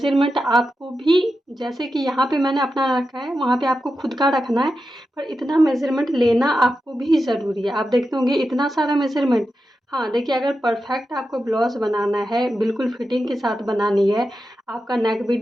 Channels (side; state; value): both; normal; correlation 0.90